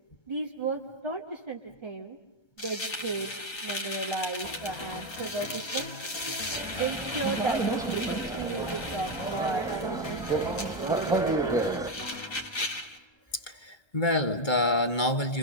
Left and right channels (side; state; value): right; late; 1.3 ms